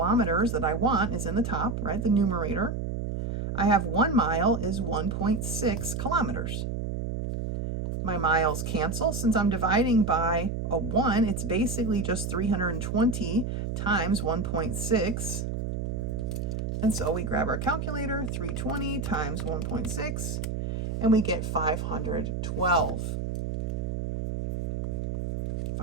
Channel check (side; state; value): right; noise; hum, 3 dB below the sound